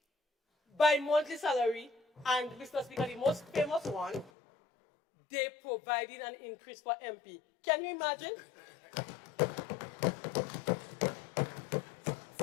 by monthly salary. And, Mr. Speaker, the most famous one, they provided an increase for MP. Can you imagine?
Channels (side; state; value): right; drops out; at 4.3 s